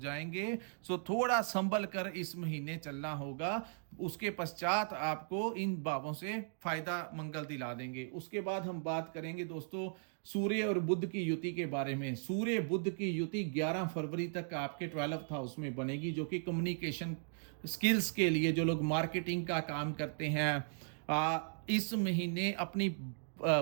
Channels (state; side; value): silent; left; digital silence